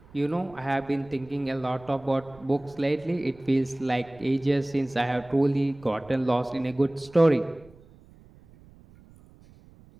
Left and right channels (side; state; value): right; noise; rumble, 25 dB below the sound